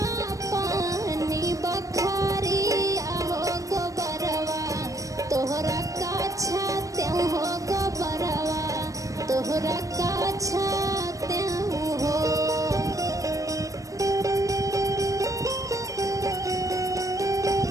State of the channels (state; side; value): late; left; 0.16 ms